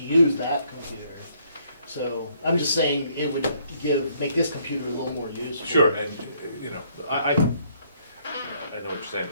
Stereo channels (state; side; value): inverted; both; correlation -0.67